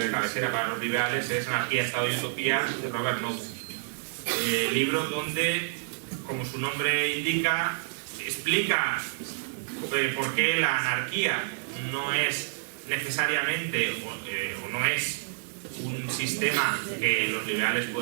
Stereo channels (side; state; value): left; silent; digital silence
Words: de cabecera para los liberales, es Anarquía, Estado y Utopía de Robert Nozick. Libro donde, como su nombre indica, explica por qué la anarquía no es necesariamente o no es un sistema que los liberales